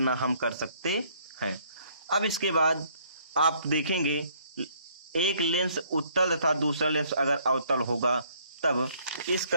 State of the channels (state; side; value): inverted; both; correlation -0.63